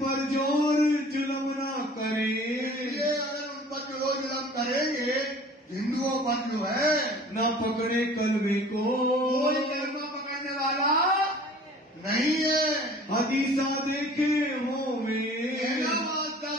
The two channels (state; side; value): normal; both; correlation 0.47